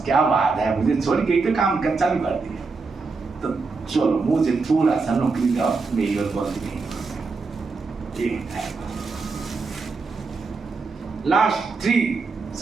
क्या बात है, मुझे छोड़ के तो काम कर चालू कर दिया, तो चलो मुझे थोड़ा सा नौकरी दो, मेरी और बोल दी। लास्ट 3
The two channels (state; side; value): quieter; left; 4.3 dB